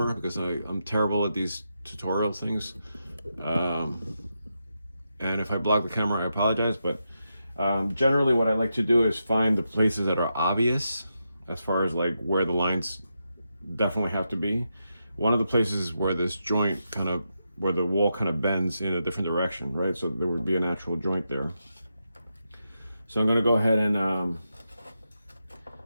because I'm terrible at these tutorial things. And if I block the camera, I apologize. But generally what I like to do is find the places that are obvious as far as like where the lines definitely have to be. One of the places where this joint where the wall kind of bends in a different direction, right? So there would be a natural joint there. So I'm gonna go ahead and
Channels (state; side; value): inverted; both; correlation -0.86